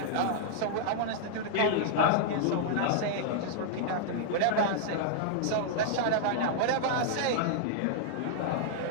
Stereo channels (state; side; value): different; both; correlation -0.01